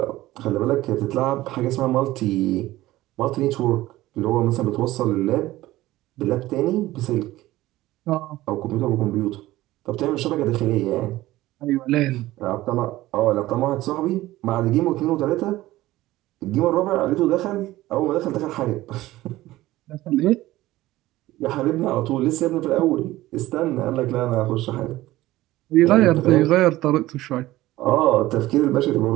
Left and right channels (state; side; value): quieter; left; 16.7 dB